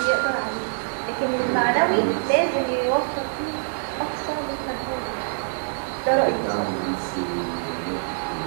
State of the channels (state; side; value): silent; left; digital silence